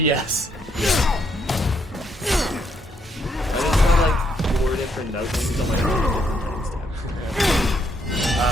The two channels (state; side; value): normal; both; correlation 0.74